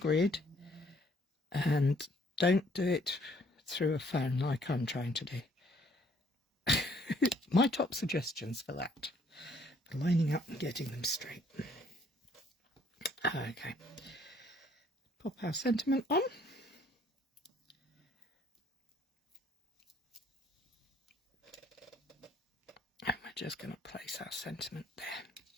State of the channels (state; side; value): normal; both; correlation 0.63